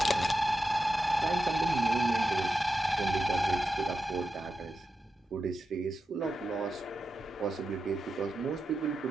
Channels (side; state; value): both; normal; correlation 0.90